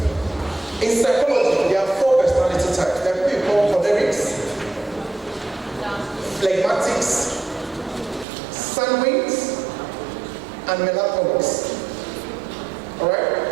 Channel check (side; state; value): left; drops out; at 8.2 s